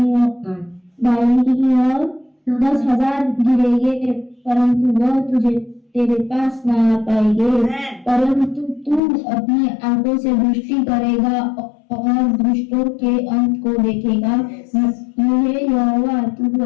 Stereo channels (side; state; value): right; drops out; at 9.0 s